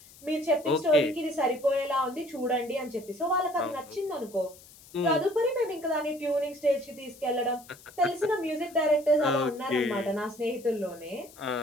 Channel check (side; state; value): left; noise; hiss, 22 dB below the sound